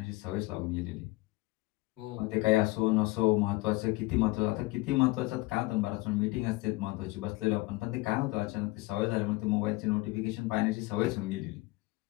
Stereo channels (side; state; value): right; quieter; 21.6 dB